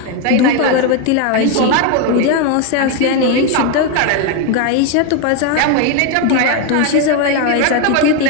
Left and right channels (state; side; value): different; both; correlation 0.02